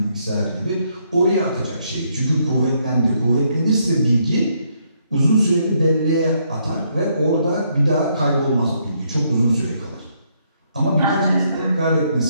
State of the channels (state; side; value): inverted; both; correlation -0.73